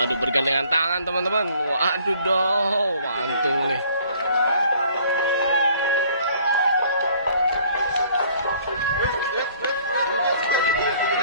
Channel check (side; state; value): both; inverted; correlation -0.57